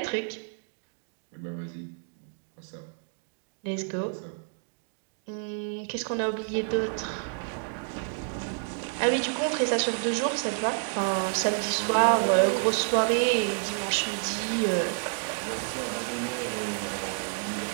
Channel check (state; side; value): silent; left; 58 dB below the other